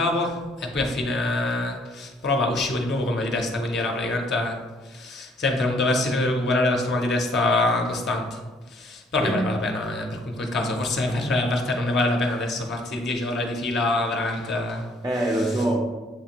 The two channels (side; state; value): both; normal; correlation 0.63